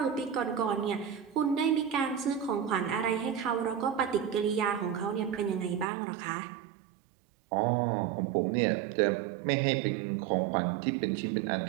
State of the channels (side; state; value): left; drops out; at 5.9 s